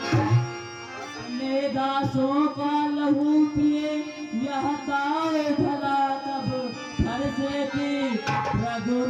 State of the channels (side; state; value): both; identical; correlation 1.00